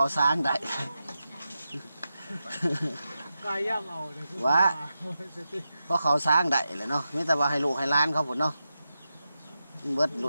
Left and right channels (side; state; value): both; inverted; correlation -0.90